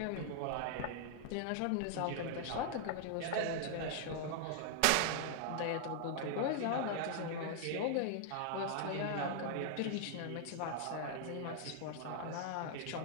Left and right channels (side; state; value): both; different; correlation 0.00